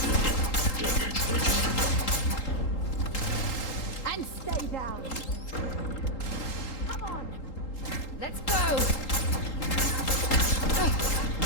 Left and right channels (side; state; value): right; late; 3.8 ms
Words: Damage registered. And stay down. Come on. Let's go!